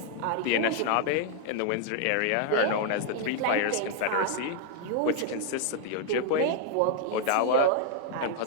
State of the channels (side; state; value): both; different; correlation 0.00